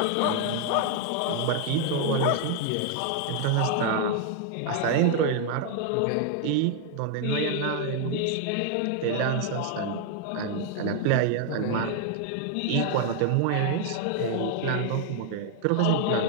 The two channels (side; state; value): both; different; correlation 0.00